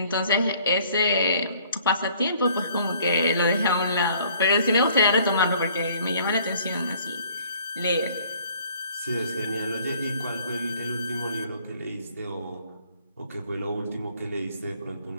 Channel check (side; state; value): both; inverted; correlation -0.58